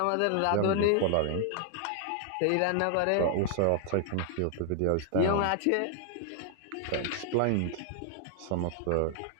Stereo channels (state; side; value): different; both; correlation 0.00